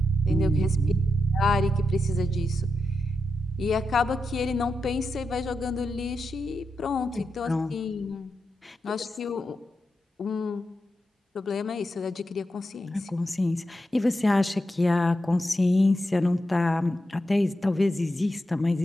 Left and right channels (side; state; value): both; normal; correlation 0.88